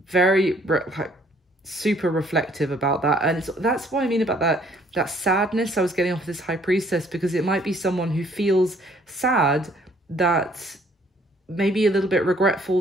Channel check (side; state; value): both; normal; correlation 0.62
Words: Super reflective about that. And that's what I mean about that sadness I was getting off this High Priestess, because it might be someone who feels sad, that maybe a little bit